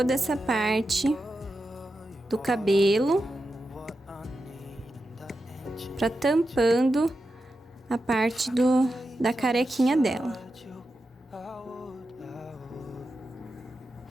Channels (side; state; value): both; normal; correlation 0.89